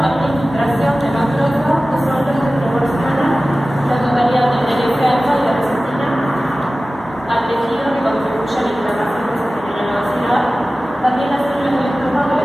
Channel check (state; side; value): normal; both; correlation 0.97